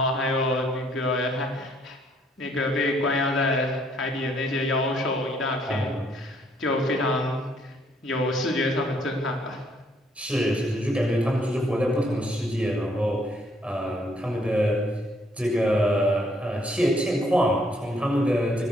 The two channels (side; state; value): both; normal; correlation 0.67